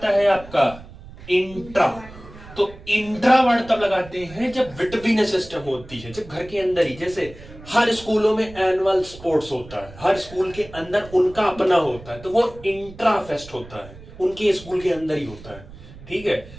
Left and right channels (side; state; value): right; noise; rumble, 18 dB below the sound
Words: है आपका इंट्रा। तो इंट्रा वर्ड तब लगाते हैं जब बिटवीन सिस्टम होती है, जब घर के अंदर ही, जैसे हर स्कूलों में एनुअल स्पोर्ट्स होता है, हर स्कूल के अंदर उनका अपना होता है, तो वो इंट्रा फेस्ट होता है, उनके स्कूल के अंदर ही होता है। ठीक है,